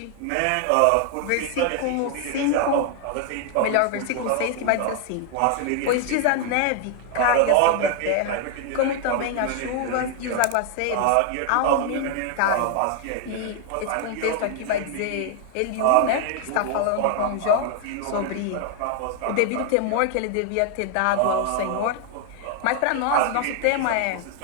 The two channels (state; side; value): different; both; correlation 0.00